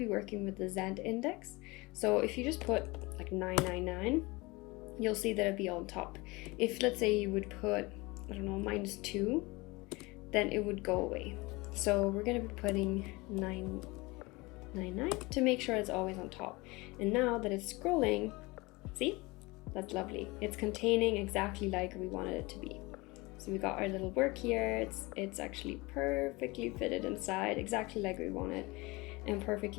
working with the Z index. So if you just put like 999, you'll see that it'll be on top. If let's say you would put, I don't know, -2, then it would go away. So we're going to be putting 999 to make sure it's always on top. And now that it's scrolling, see, that's lovely. It's containing exactly like we wanted it to be. So we got our little work here. It's actually perfectly fitted inside, exactly like we want it, and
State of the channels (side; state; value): right; quieter; 23.7 dB